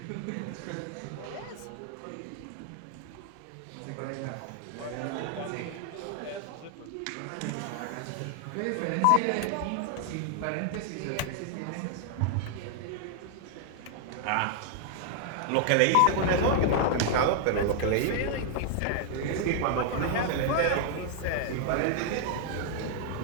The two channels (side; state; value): both; different; correlation 0.00